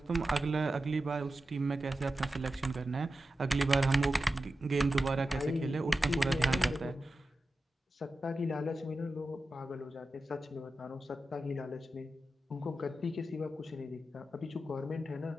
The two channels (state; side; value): normal; both; correlation 0.92